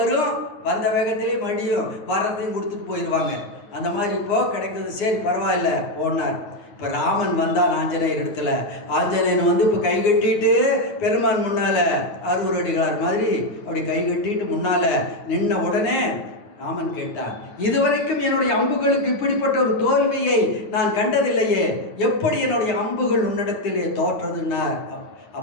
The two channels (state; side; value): late; right; 9.7 ms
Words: வந்த வேகத்திலே மடியும் வர்றதையும் கொடுத்துட்டு போயிடுவாங்க. அந்த மாதிரி இப்போ கிடைக்கிறது. சரி பரவாயில்ல போனார். இப்போ ராமன் வந்தான் ஆஞ்சநேயர் இடத்துல. ஆஞ்சநேயன் வந்து இப்போ கை கட்டிட்டு பெருமான் முன்னால அறுவர் அடிகளார் மாதிரி அப்படி கை கட்டிட்டு முன்னால நின்ன உடனே ராமன் கேட்டான், இதுவரைக்கும் என்னுடைய அம்புகளுக்கு இப்படிப்பட்ட ஒரு தோல்வியை நான் கண்டதில்லையே, எப்படி என்னுடைய அம்புகள் உன்னிடத்திலே தோற்றதுன்னார்.